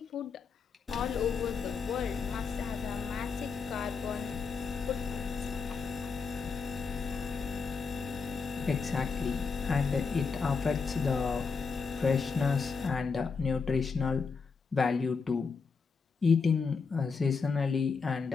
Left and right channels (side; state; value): right; quieter; 5.1 dB